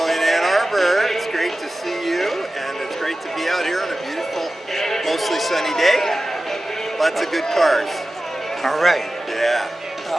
in Ann Arbor. It's great to see you, and it's great to be out here on a beautiful, mostly sunny day. Lots of good cars. All right. Yeah.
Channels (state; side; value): normal; both; correlation 0.95